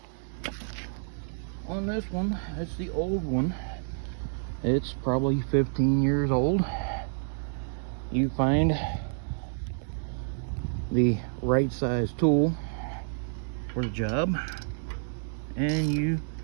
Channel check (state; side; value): silent; left; digital silence